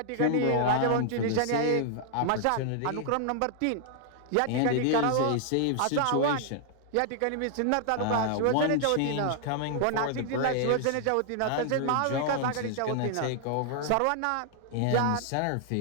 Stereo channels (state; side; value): different; both; correlation 0.00